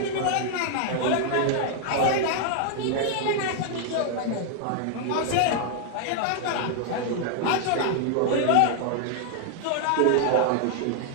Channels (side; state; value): both; different; correlation 0.00